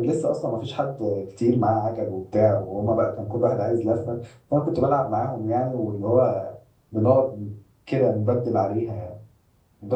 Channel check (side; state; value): both; identical; correlation 1.00